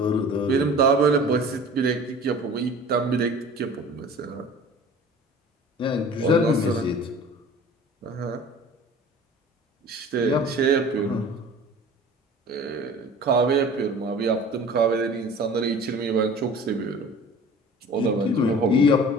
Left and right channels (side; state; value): both; normal; correlation 0.43